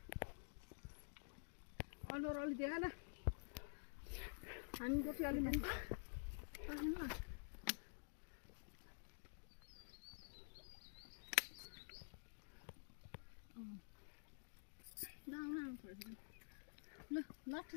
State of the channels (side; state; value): right; silent; digital silence